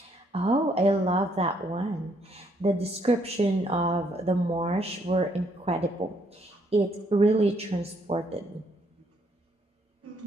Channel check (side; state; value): both; normal; correlation 0.70